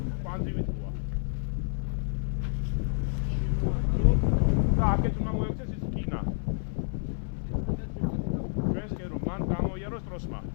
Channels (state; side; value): silent; right; 58 dB below the other